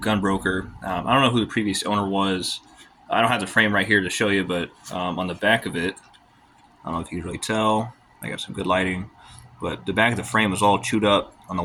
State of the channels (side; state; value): both; identical; correlation 1.00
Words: Gunbroker. I don't know who the previous owner was. I don't have the frame right here to show you, but on the back of it, I don't know if you can really tell. I got some good lighting, but the back of the frame was all chewed up on the